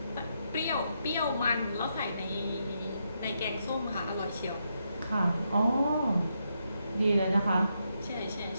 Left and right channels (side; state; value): both; inverted; correlation -0.81